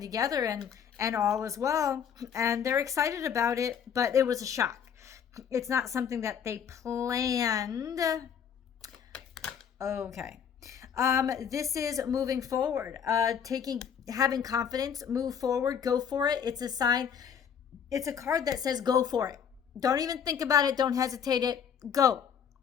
together and all is well, and they're excited about it, but it was a shock. It's not something that they planned. Okay. This is moving forward, having confidence, move forward, go for it. It's a sign. It's a card that says go for it. Don't even think about it. Don't hesitate it. Go,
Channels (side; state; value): right; quieter; 7.9 dB